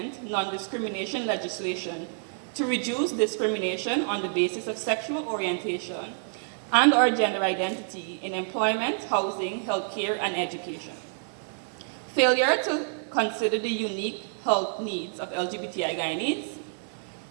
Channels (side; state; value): left; silent; digital silence